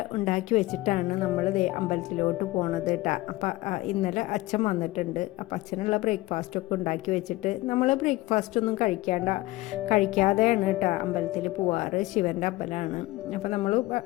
ഉണ്ടാക്കി വെച്ചിട്ടാണ് നമ്മൾ അമ്പലത്തിലോട്ട് പോണത് കേട്ടോ. അപ്പോൾ ഇന്നലെ അച്ഛൻ വന്നിട്ടുണ്ട്. അപ്പോൾ അച്ഛനുള്ള ബ്രേക്ക്ഫാസ്റ്റൊക്കെ ഉണ്ടാക്കി വെച്ചിട്ട് നമ്മൾ ബ്രേക്ക്ഫാസ്റ്റൊന്നും കഴിക്കാതെയാണ് കേട്ടോ അമ്പലത്തിൽ പോവാറ്. ശിവൻ്റെ അമ്പലമാണ്. അപ്പോൾ നമ്മൾ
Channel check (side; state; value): right; quieter; 19.0 dB